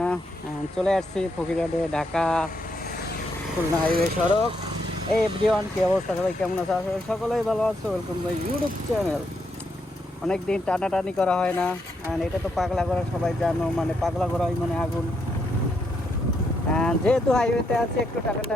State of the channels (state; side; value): normal; both; correlation 0.78